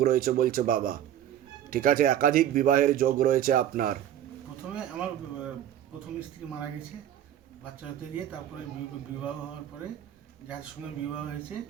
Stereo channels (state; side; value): quieter; left; 11.1 dB